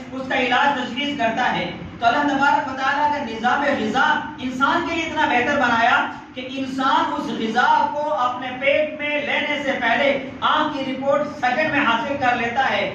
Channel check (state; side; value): identical; both; correlation 1.00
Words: اس کا علاج تجویز کرتا ہے۔ تو اللہ تبارک و تعالیٰ کا نظام غذا انسان کے لیے اتنا بہتر بنایا کہ انسان اس غذا کو اپنے پیٹ میں لینے سے پہلے آنکھ کی رپورٹ سیکنڈ میں حاصل کر لیتا ہے،